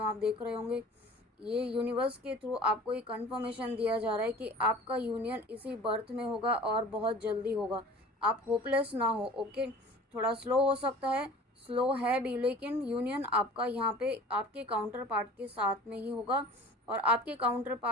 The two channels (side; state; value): both; normal; correlation 0.44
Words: आप देख रहे होंगे ये यूनिवर्स के थ्रू आपको ये कंफर्मेशन दिया जा रहा है कि आपका यूनियन इसी बर्थ में होगा और बहुत जल्दी होगा। आप होपलेस ना हो। ओके, थोड़ा स्लो हो सकता है, स्लो है भी, लेकिन यूनियन आपका यहाँ पे आपके काउंटर पार्ट के साथ में ही होगा और आपके काउंटर